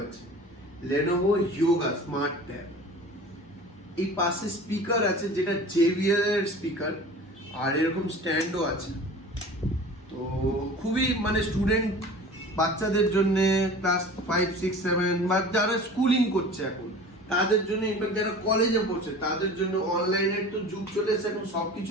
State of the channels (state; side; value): normal; both; correlation 0.40